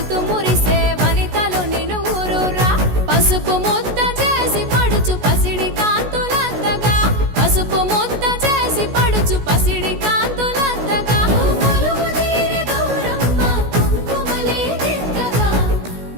మురిసే వనితలు నిన్ను ఊరురా పసుపు ముద్ద చేసి పడుచు పసిడి కాంతులంతగా పసుపు ముద్ద చేసి పడుచు పసిడి కాంతులంతగా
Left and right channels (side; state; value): left; late; 16 ms